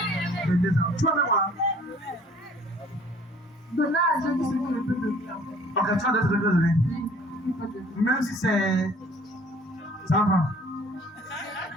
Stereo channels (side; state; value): both; normal; correlation 0.54